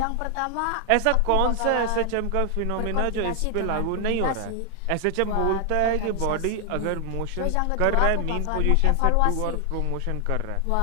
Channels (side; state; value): both; different; correlation 0.00